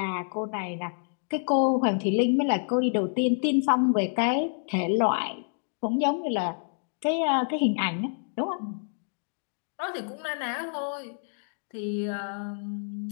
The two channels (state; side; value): silent; right; 59 dB below the other